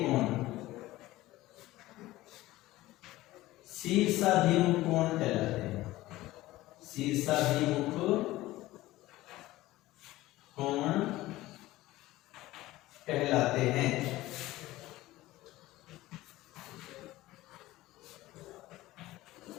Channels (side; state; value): right; quieter; 17.2 dB